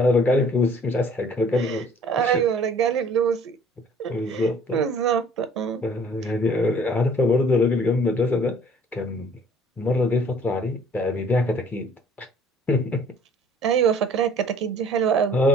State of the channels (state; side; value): normal; both; correlation 0.54